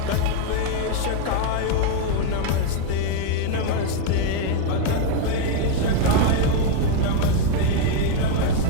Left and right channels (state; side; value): different; both; correlation 0.00